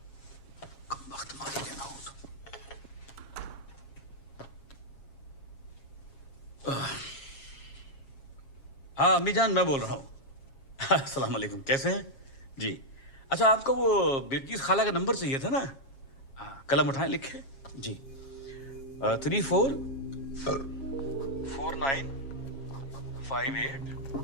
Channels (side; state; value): right; late; 7.3 ms